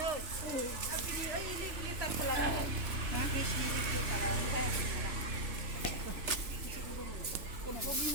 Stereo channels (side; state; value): left; late; 3.4 ms